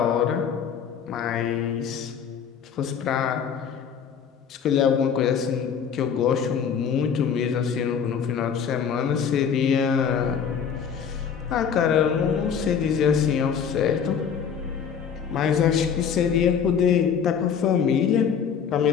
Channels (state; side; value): quieter; right; 7.3 dB